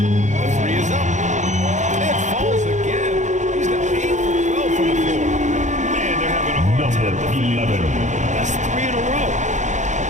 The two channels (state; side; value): late; left; 0.35 ms